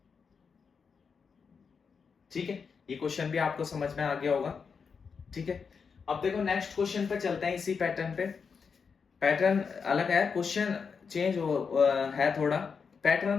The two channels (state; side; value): quieter; right; 5.8 dB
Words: ठीक है। ये क्वेश्चन भी आपको समझ में आ गया होगा, ठीक है। अब देखो नेक्स्ट क्वेश्चन पे चलते हैं, इसी पैटर्न पे। पैटर्न अलग है, क्वेश्चन चेंज है थोड़ा,